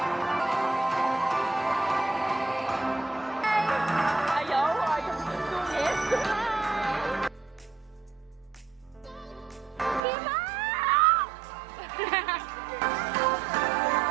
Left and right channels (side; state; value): left; drops out; at 10.0 s